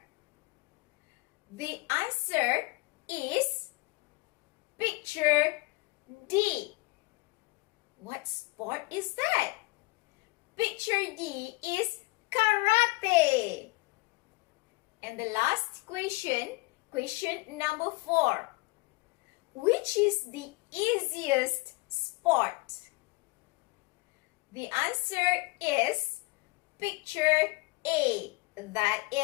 The answer is picture D. What sport is that? Picture D is karate. And the last question, question number 4. Which is the easiest sport? The answer is picture A. That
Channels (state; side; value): quieter; right; 24.8 dB